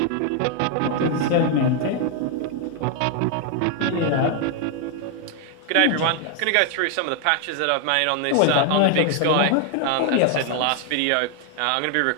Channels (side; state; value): both; different; correlation 0.00